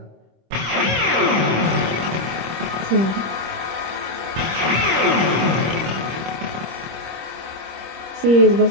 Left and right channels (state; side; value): late; left; 26 ms